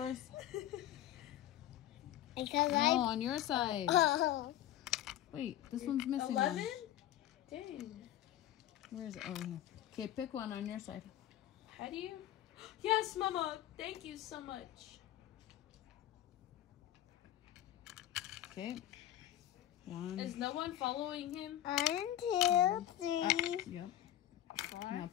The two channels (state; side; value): quieter; right; 12.6 dB